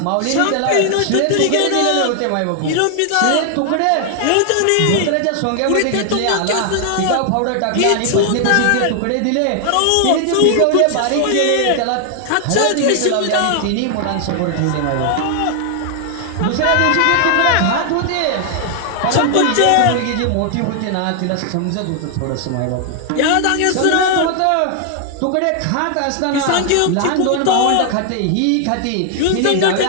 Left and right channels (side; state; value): both; different; correlation 0.00